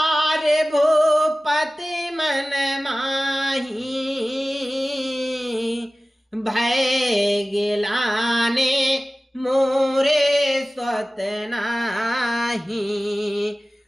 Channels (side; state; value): both; normal; correlation 0.97